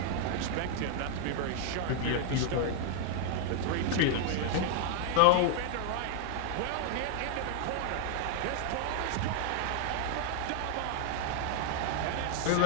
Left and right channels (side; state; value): both; different; correlation 0.00